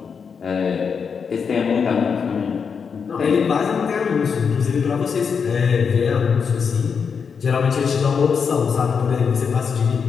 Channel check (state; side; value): quieter; right; 6.2 dB